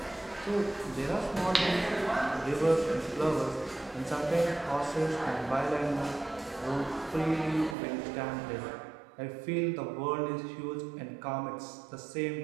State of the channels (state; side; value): drops out; left; at 7.8 s